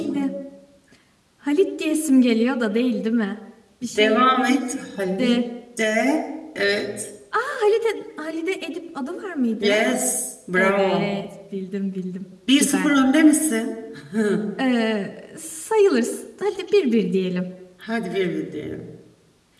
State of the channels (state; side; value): identical; both; correlation 1.00